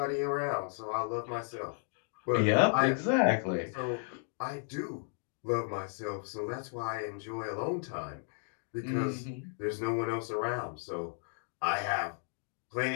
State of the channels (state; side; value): silent; right; digital silence